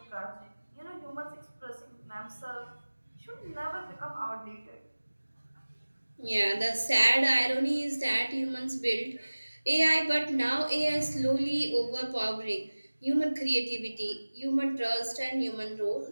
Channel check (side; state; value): both; inverted; correlation -1.00